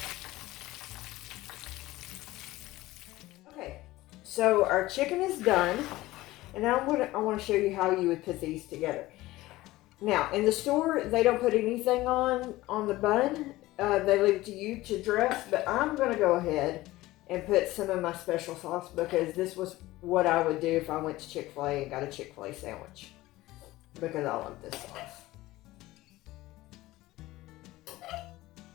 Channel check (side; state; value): right; quieter; 17.8 dB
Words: Okay, so our chicken is done. And now I want to show you how you would put these together. Now, in the store, they don't put anything on the bun. They leave it to you to dress, but I'm going to go ahead and put some of my special sauce because this was what I would do if I went to Chick-fil-A and got a Chick-fil-A sandwich because I love this sauce.